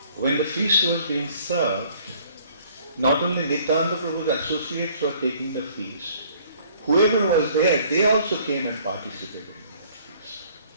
when the feast was being served, not only Nityananda Prabhu's associates were taking the feast, whoever was there, they also came and participated in the feast.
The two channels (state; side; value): inverted; both; correlation -0.58